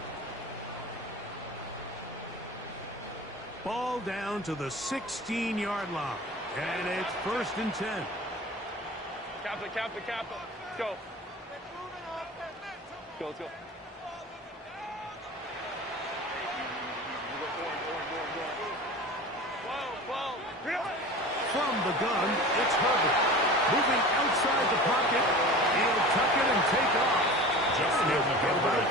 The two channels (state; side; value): normal; both; correlation 0.36